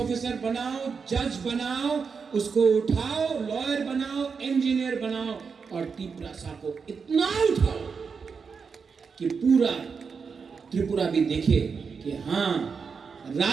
बनाओ, जज बनाओ, उसको उठाओ, लॉयर बनाओ, इंजीनियर बनाओ, और तिपरासा को इतना उठाओ कि पूरा त्रिपुरा भी देखे कि हाँ,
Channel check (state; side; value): quieter; left; 5.6 dB